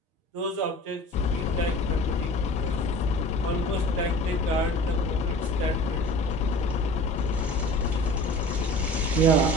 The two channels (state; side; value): normal; both; correlation 0.42